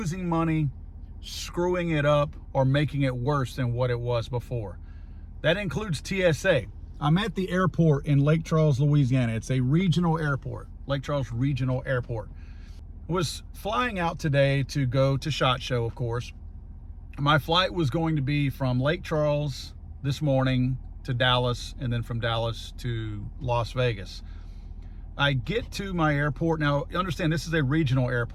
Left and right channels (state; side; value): identical; both; correlation 1.00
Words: money, screwing it up, or making it worse than what it was before. That includes TSA. I'm at the airport in Lake Charles, Louisiana. It's a regional airport, Lake Charles Regional Airport. Was flying out today to go to SHOT Show, of course. My flight was going to be from Lake Charles this morning to Dallas, and then from Dallas to Las Vegas. I get to my airport. Now, understand, this is a regional